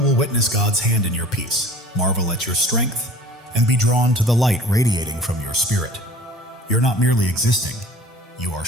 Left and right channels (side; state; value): both; normal; correlation 0.45